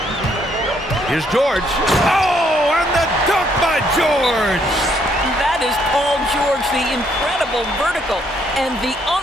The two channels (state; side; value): normal; both; correlation 0.70